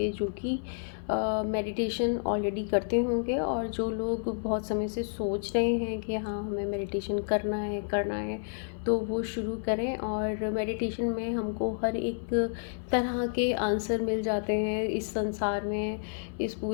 जो कि मेडिटेशन ऑलरेडी करते होंगे, और जो लोग बहुत समय से सोच रहे हैं कि हाँ हमें मेडिटेशन करना है, तो वो शुरू करें। और मेडिटेशन में हमको हर एक तरह के आंसर मिल जाते हैं। इस संसार में, इस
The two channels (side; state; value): right; silent; 58 dB below the other